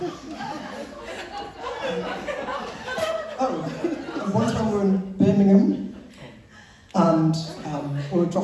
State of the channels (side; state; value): both; identical; correlation 1.00